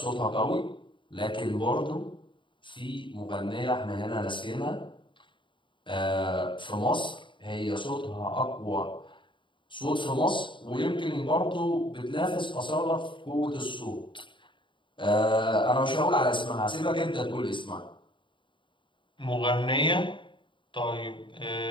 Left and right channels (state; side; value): late; right; 0.24 ms